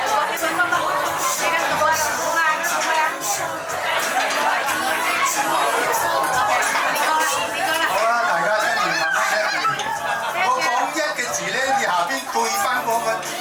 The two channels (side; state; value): both; identical; correlation 1.00